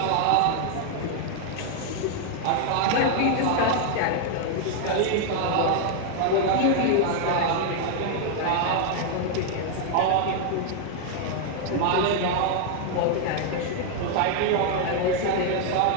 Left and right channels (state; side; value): different; both; correlation 0.00